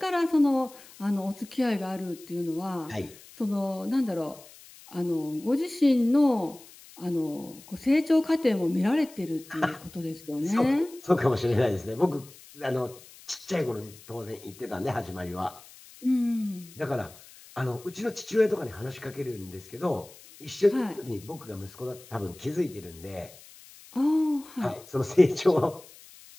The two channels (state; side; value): noise; left; hiss, 21 dB below the sound